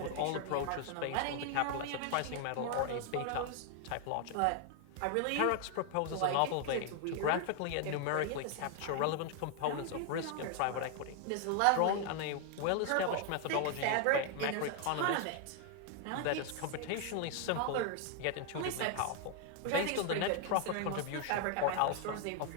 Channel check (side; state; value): both; different; correlation 0.00